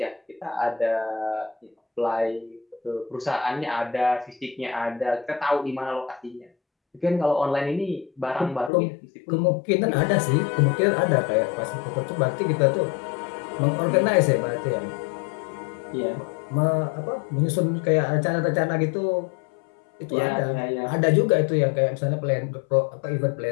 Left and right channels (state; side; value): drops out; right; at 8.7 s